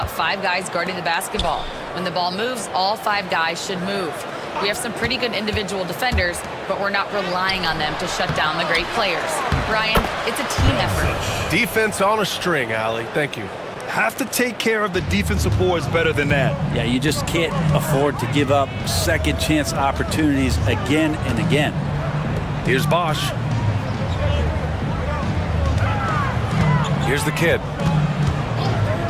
5 guys guarding the basketball. When the ball moves, all 5 guys should move. We have some pretty good individual defenders, but we're not relying on them to shut down the great players. Brian, it's a team effort. Defense on a string, Allie. Thank you. Have to take care of the defensive boards better than that. Yeah, you just can't afford to give up second chance opportunities again and again. Here's Bosch. Here's the kid.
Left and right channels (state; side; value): identical; both; correlation 1.00